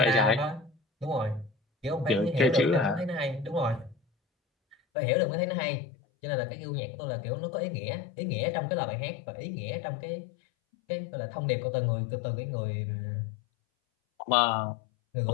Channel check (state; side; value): drops out; right; at 4.8 s